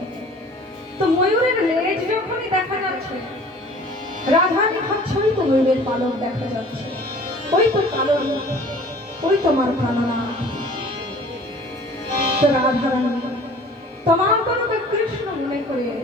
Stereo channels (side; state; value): both; normal; correlation 0.48